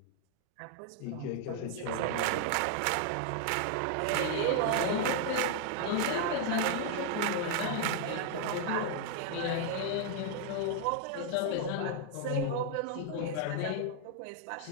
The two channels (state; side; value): different; both; correlation 0.00